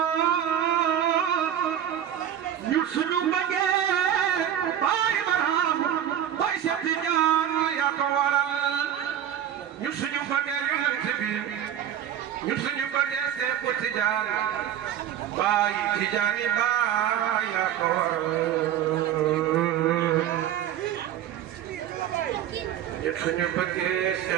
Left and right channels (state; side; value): quieter; left; 10.3 dB